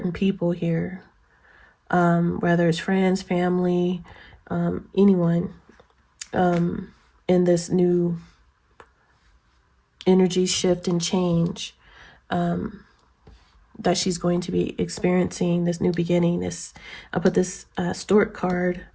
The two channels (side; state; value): both; identical; correlation 1.00